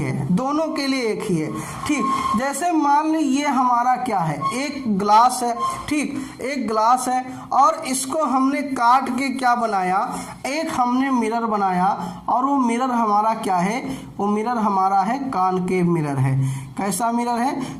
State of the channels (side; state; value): both; identical; correlation 1.00